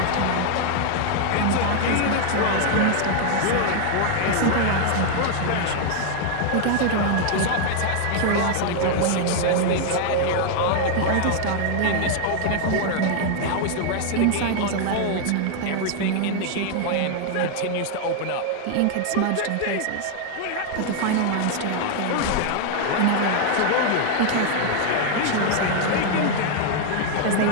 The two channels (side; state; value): both; different; correlation 0.00